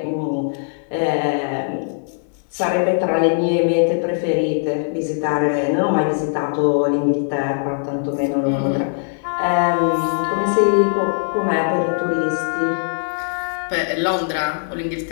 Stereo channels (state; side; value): silent; right; digital silence